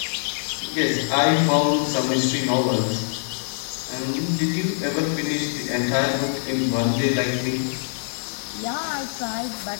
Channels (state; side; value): silent; right; digital silence